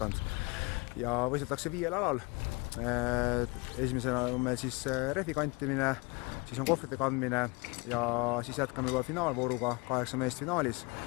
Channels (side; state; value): right; quieter; 27.9 dB